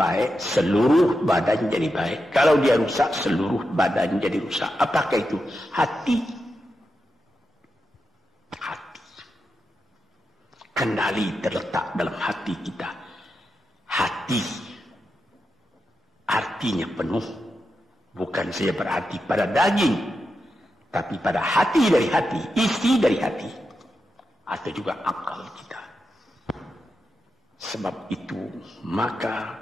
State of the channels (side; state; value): both; normal; correlation 0.88